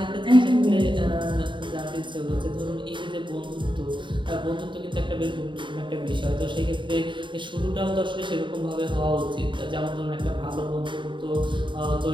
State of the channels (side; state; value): left; late; 0.23 ms